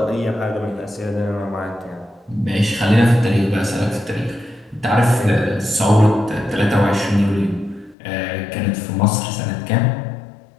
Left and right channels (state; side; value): drops out; right; at 8.0 s